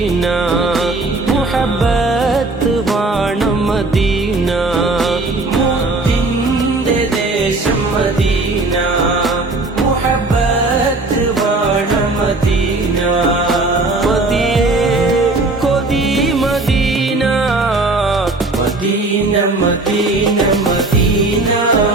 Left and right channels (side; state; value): left; quieter; 3.2 dB